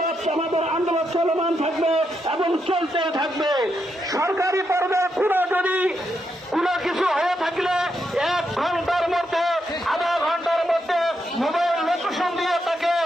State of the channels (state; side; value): normal; both; correlation 0.81